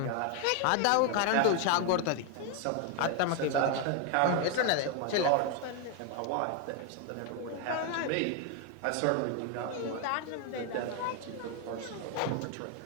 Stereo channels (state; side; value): different; both; correlation 0.01